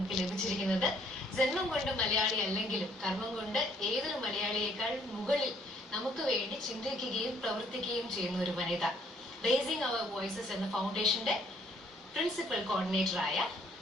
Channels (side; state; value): both; normal; correlation 0.64